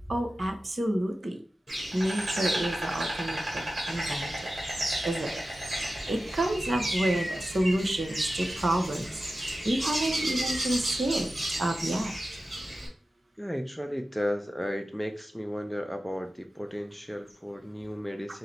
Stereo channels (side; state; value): both; normal; correlation 0.94